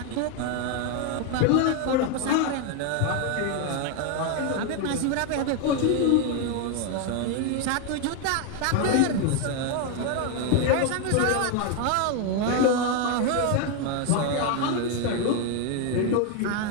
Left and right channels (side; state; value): both; different; correlation 0.01